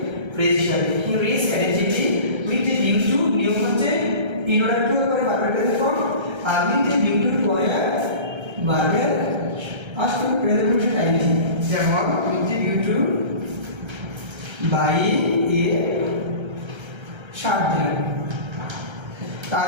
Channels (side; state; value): left; late; 1.3 ms